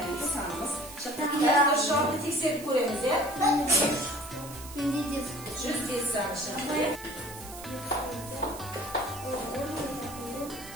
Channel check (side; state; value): right; noise; hiss, 15 dB below the sound